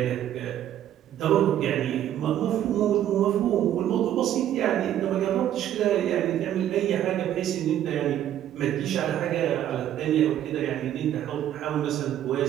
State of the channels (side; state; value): left; quieter; 11.4 dB